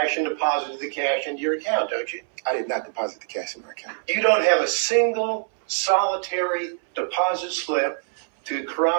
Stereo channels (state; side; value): silent; left; 63 dB below the other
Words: and deposited the cash into your account, don't you? I did not deposit the cash in my account. You don't have a single solitary deposit slip to